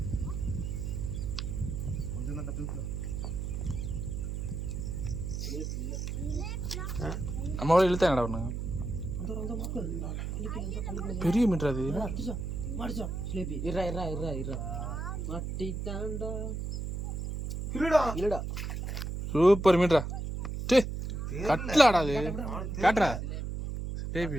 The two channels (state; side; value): noise; right; hum, 4 dB below the sound